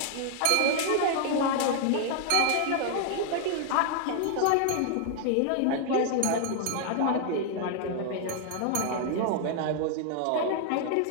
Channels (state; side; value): different; both; correlation 0.00